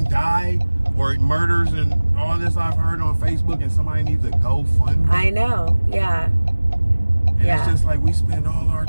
die or murders and all this I've heard on Facebook, and somebody needs a GoFundMe. I know. Yeah. And it's just like we spend all our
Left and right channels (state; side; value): inverted; both; correlation -1.00